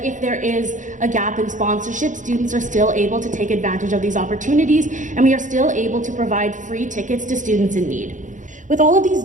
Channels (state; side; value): late; left; 0.37 ms